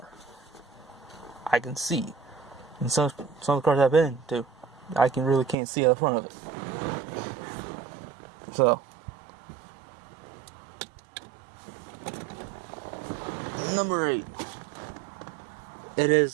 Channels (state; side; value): drops out; left; at 5.6 s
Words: I can see. And some of the cars I've been to, I really can't see out in front of it. So, number 8.